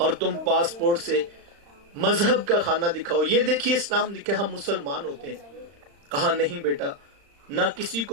تم پاسپورٹ سے مذہب کا خانہ دکھاؤ، یہ دیکھیے اسلام لکھے ہم مسلمان ہوتے ہیں۔ کہا نہیں بیٹا، نہ کسی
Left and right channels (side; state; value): left; late; 35 ms